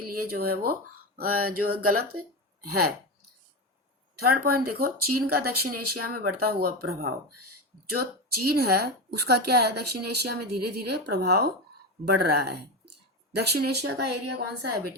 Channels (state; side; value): normal; both; correlation 0.17